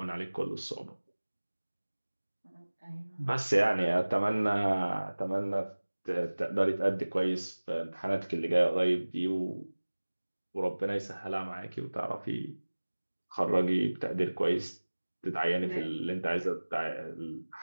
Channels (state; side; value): inverted; both; correlation -1.00